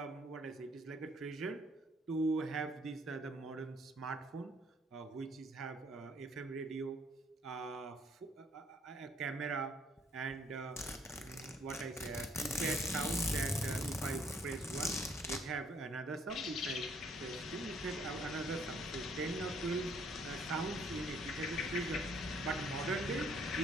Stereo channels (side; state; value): both; normal; correlation 0.64